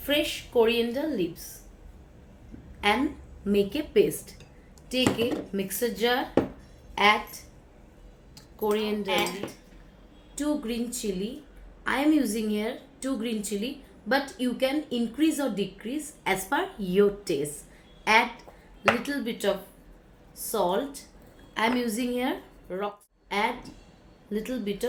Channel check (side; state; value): both; identical; correlation 1.00